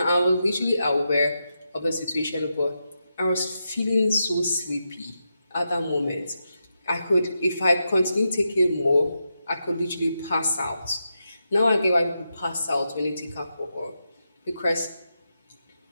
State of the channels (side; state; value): both; inverted; correlation -0.86